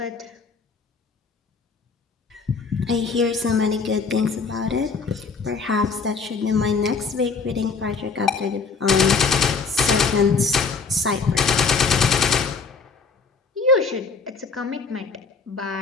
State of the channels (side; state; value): right; quieter; 4.9 dB